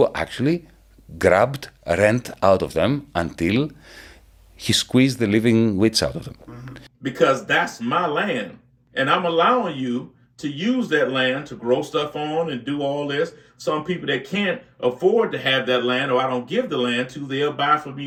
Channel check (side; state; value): both; identical; correlation 1.00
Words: actually grabbed rent out of them until he squeezed the living wits out of them. Because that's my land. And I'm allowing you to use that land to grow stuff on and do all this. Some people that can't afford to have that land, or I don't give the land to, they'll buy from